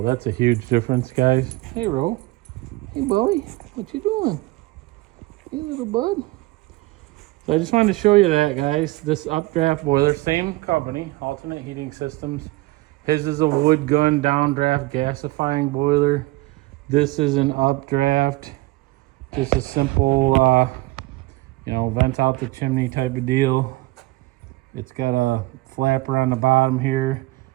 that's a huge difference, guys. Hey, Ro. Hey, Bowie. What you doing? Hey, little bud. So I just wanted to show you that, guys. This updraft boiler, same company, Alternate Heating Systems. His is a wood gun downdraft gasifying boiler. This is an updraft, just a simple, vent out the chimney type of deal. It's got a flapper on the bottom here,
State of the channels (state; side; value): quieter; left; 20.4 dB